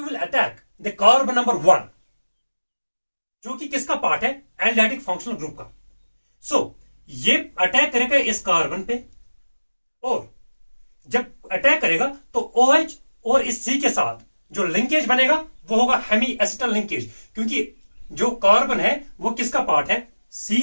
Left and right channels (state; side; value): inverted; both; correlation -1.00